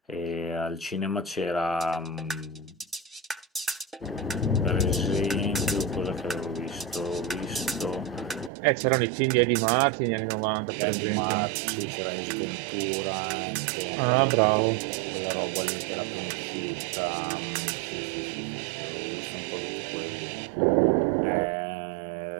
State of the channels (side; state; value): left; drops out; at 8.5 s